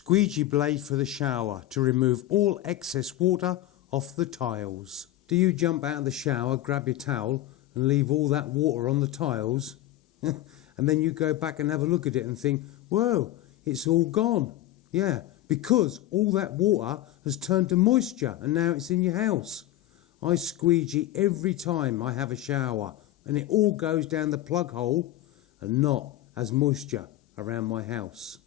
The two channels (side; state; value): right; quieter; 14.4 dB